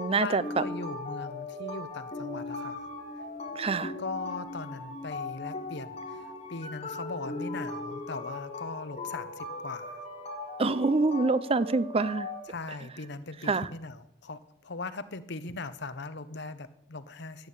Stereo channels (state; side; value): normal; both; correlation 0.27